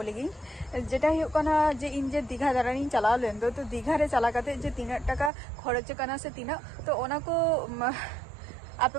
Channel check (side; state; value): left; drops out; at 5.3 s